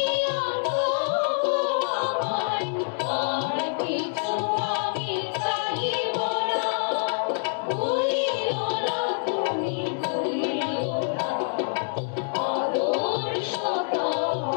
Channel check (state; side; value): silent; right; digital silence